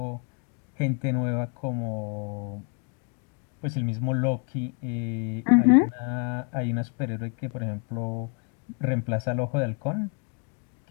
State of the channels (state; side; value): quieter; right; 37.3 dB